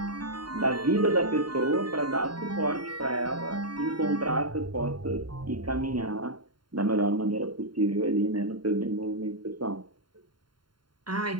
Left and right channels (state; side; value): late; left; 0.72 ms